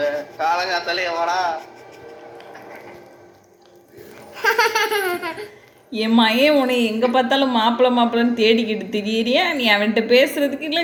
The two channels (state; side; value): identical; both; correlation 1.00